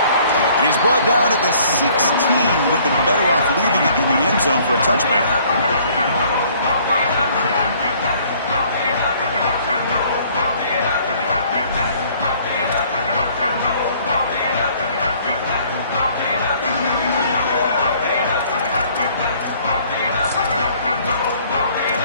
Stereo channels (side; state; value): both; inverted; correlation -0.58